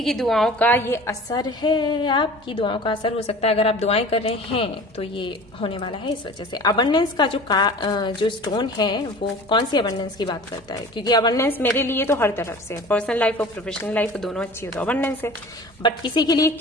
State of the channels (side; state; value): both; normal; correlation 0.41